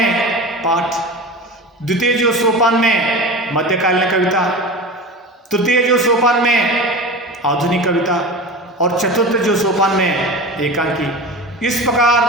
पाठ, द्वितीय जो सोपान में मध्यकालीन कविता, तृतीय जो सोपान में आधुनिक कविता और चतुर्थ जो सोपान में एकांकी। इस प्रकार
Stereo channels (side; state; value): both; normal; correlation 0.30